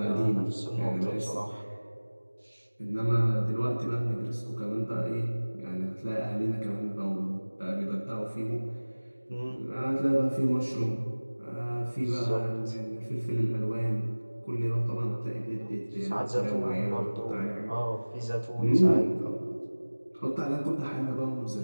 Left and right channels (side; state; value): both; inverted; correlation -1.00